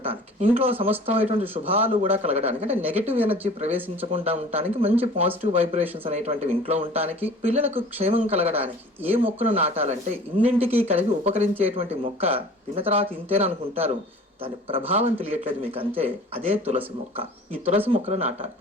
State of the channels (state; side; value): normal; both; correlation 0.45